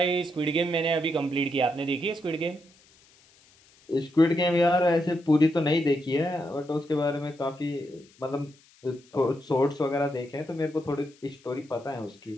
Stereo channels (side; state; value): left; noise; hiss, 29 dB below the sound